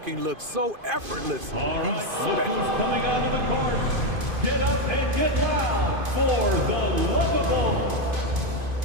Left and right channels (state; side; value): late; left; 2.5 ms